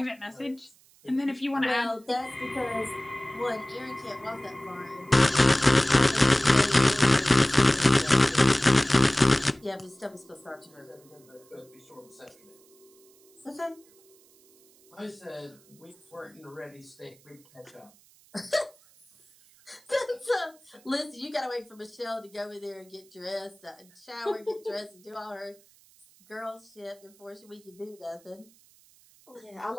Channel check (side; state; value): right; noise; hiss, 29 dB below the sound